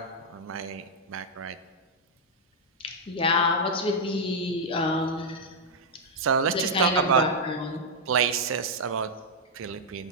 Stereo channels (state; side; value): normal; both; correlation -0.03